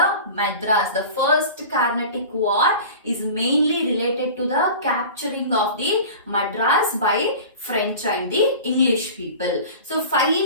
Madras, the first Carnatic War, is mainly related to the capturing of the Madras by French and the English people. So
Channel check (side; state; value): both; inverted; correlation -0.37